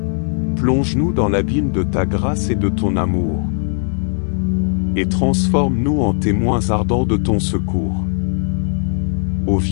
Plonge-nous dans l'abîme de ta grâce et de ton amour. Et transforme-nous en témoins ardents de ton secours. Ô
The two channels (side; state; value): right; silent; digital silence